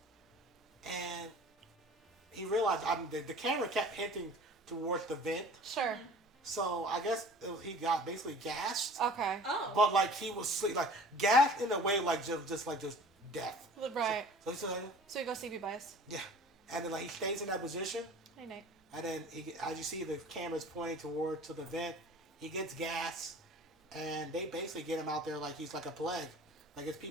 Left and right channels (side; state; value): both; normal; correlation 0.46